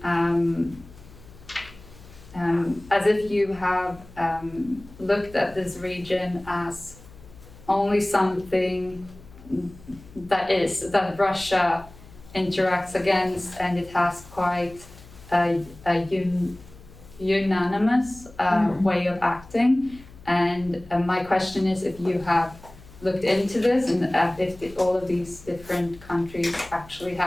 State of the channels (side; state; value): left; noise; hum, 21 dB below the sound